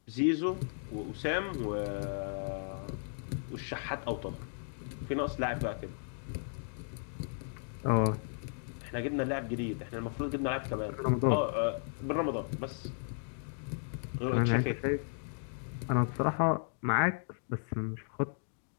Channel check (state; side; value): silent; right; digital silence